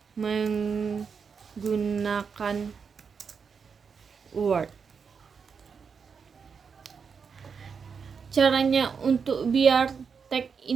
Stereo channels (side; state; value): left; quieter; 6.0 dB